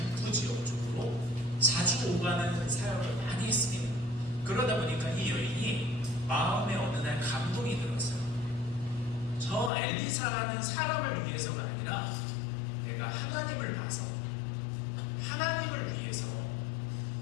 지역 쪽으로 자주 오가는 사역을 많이 했습니다. 그러다 보니까 이 여인이 마음에 어느 날 감동이 들었어요. 저 엘리사라는 사람을 위해서가 아니라 내가 하나님을 봐서 하나님을 위해서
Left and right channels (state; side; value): drops out; right; at 9.7 s